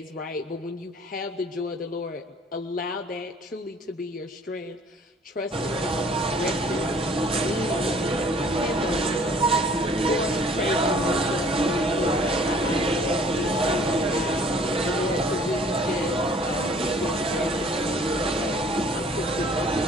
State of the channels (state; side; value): normal; both; correlation 0.55